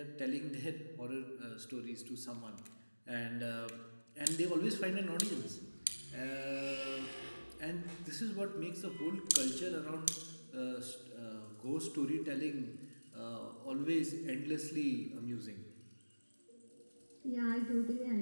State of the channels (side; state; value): both; inverted; correlation -1.00